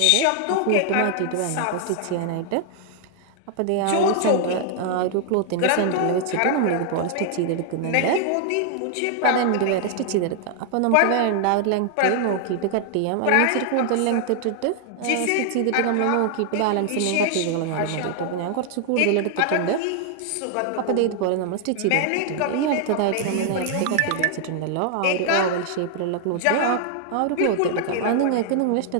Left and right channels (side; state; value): both; different; correlation 0.00